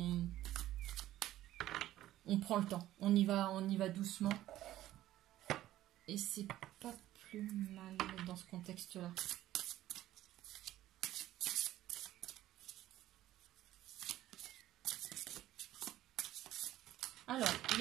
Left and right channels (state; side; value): quieter; left; 14.2 dB